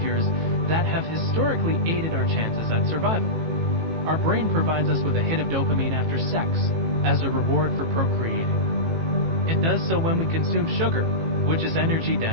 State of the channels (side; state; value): left; late; 18 ms